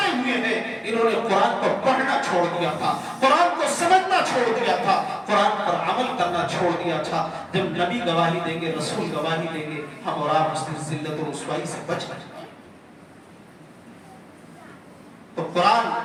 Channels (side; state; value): both; identical; correlation 1.00